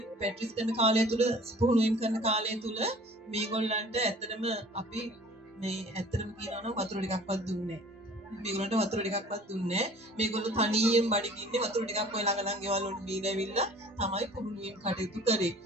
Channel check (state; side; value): normal; both; correlation 0.48